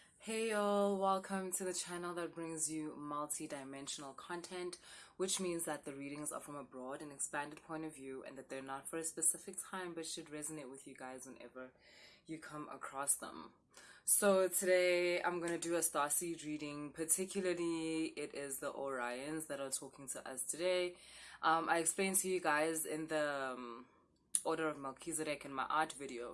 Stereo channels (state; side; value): identical; both; correlation 1.00